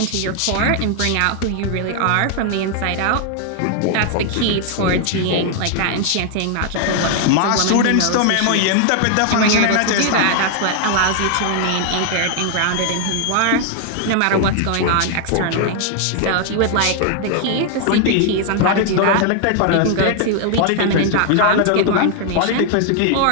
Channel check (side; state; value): both; different; correlation 0.00